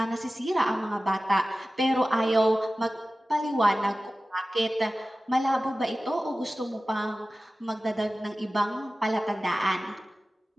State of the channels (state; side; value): normal; both; correlation 0.96